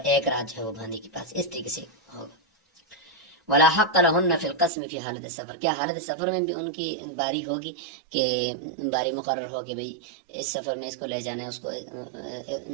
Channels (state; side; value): drops out; left; at 4.7 s